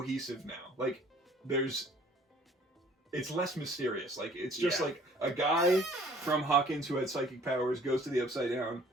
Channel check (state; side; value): normal; both; correlation 0.55